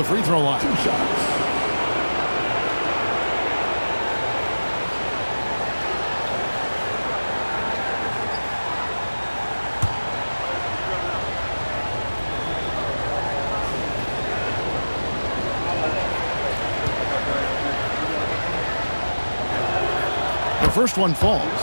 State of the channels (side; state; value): both; inverted; correlation -1.00